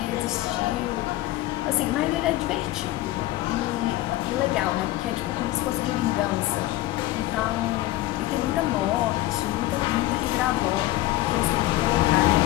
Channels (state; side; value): quieter; right; 16.5 dB